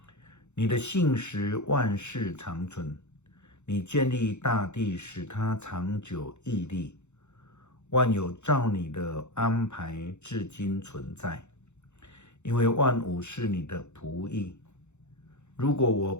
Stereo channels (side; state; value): right; late; 0.83 ms